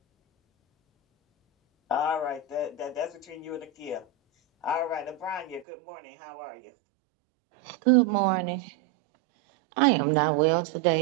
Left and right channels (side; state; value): left; drops out; at 5.7 s